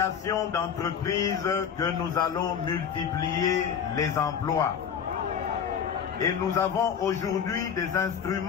d'entreprises que nous allons multiplier les emplois. Et nous avons aujourd'hui des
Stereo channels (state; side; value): quieter; right; 7.6 dB